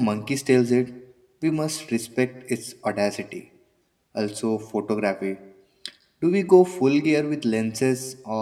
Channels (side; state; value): both; identical; correlation 1.00